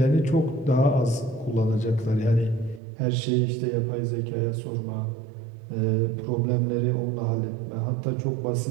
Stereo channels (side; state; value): left; drops out; at 2.8 s